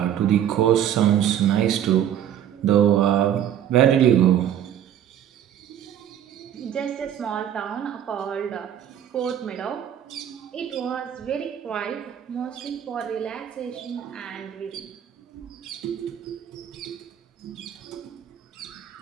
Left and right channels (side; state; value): left; quieter; 10.2 dB